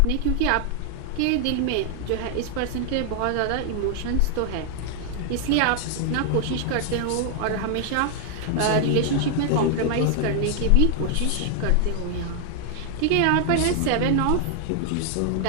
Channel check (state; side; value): different; both; correlation 0.00